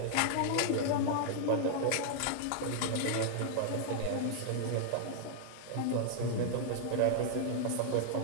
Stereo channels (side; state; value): both; different; correlation -0.01